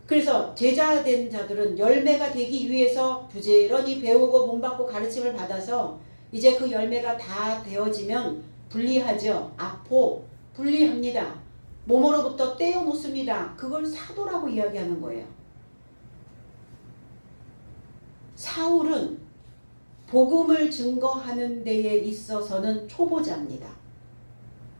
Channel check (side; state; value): both; inverted; correlation -1.00